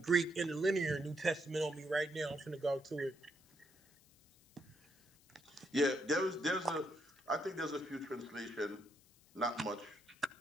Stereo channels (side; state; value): left; noise; hiss, 28 dB below the sound